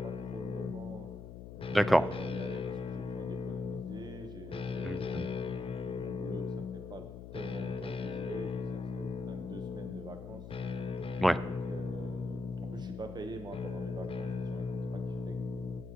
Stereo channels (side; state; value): left; noise; hum, 11 dB below the sound